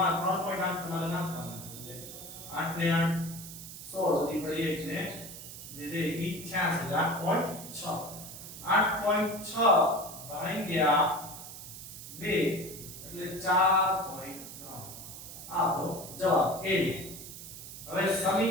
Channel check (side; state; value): right; noise; hiss, 12 dB below the sound